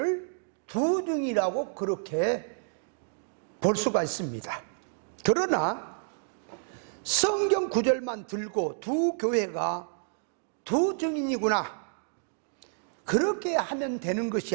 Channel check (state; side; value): silent; left; digital silence